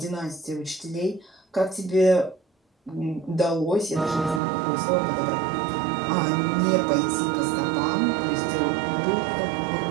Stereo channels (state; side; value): drops out; left; at 4.4 s